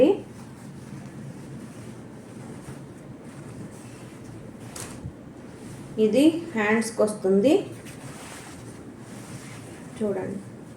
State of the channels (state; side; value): identical; both; correlation 1.00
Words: ఇది హ్యాండ్స్కి వస్తుంది చూడండి.